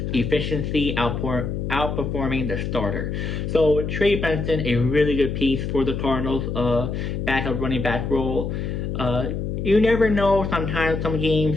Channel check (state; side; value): noise; left; hum, 3 dB below the sound